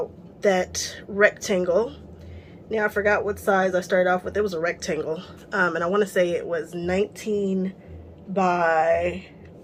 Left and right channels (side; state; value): both; identical; correlation 1.00